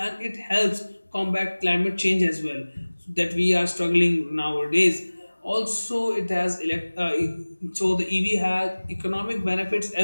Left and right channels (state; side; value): inverted; both; correlation -1.00